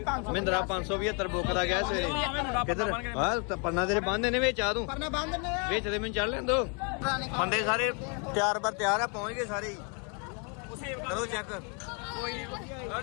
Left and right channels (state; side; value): quieter; right; 36.7 dB